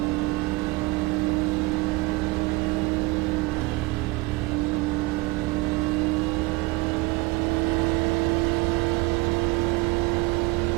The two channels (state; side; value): quieter; left; 22.5 dB